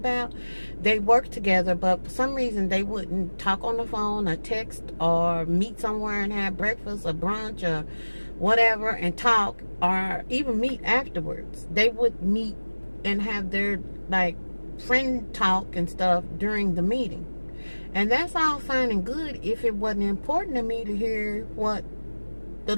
They worked together, but for some reason they wouldn't talk on the phone or text or meet somewhere and have breakfast or brunch or whatever and talk, or even meet afterwards. They would meet and have their friend talk and stuff during the meeting. And that's all fine and good if it wasn't important to me to hear what the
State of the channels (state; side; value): inverted; both; correlation -1.00